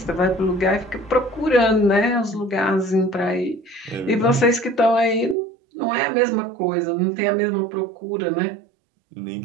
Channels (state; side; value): drops out; left; at 5.4 s